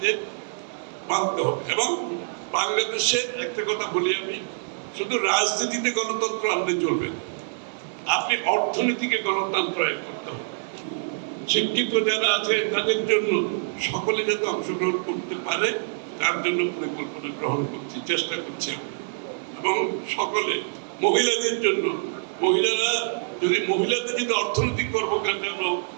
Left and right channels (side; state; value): left; silent; 59 dB below the other